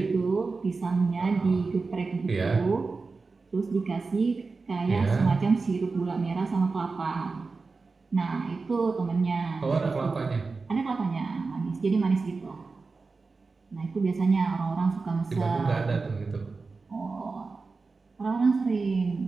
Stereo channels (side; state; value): left; quieter; 4.1 dB